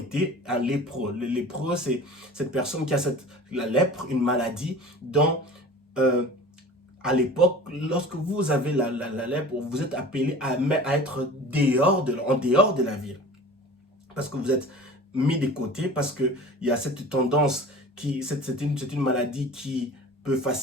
un lépreux. Le lépreux, c'est cette personne qui a la lèpre, une maladie dont, à l'époque, lorsque vous avez la lèpre, vous êtes appelé à être en dehors de la ville. Parce que vous êtes mis de côté, parce qu'il y a cette tendance, c'est une maladie qui peut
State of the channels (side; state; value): both; normal; correlation 0.40